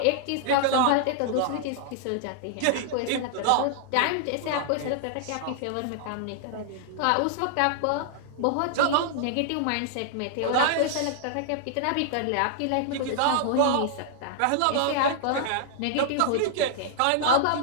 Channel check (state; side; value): different; both; correlation -0.01